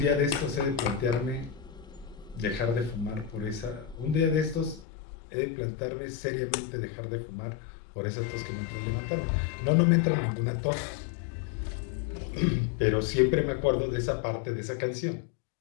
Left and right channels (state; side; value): drops out; right; at 4.9 s